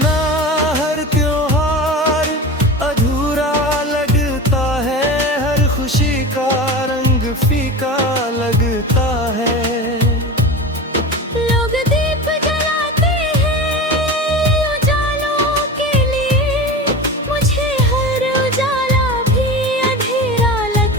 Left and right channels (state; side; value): normal; both; correlation 0.29